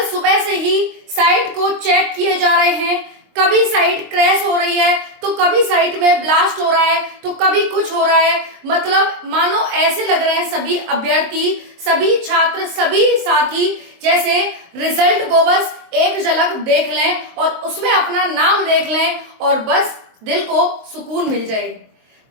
सुबह से ही साइट को चेक किए जा रहे हैं। कभी साइट क्रैश हो रही है तो कभी साइट में ब्लास्ट हो रहा है तो कभी कुछ हो रहा है। मतलब मानो ऐसे लग रहे हैं सभी अभ्यर्थी, सभी छात्र, सभी साथी जैसे रिजल्ट को बस एक झलक देख लें और उसमें अपना नाम देख लें और बस दिल को सुकून मिल जाए।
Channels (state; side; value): late; left; 23 ms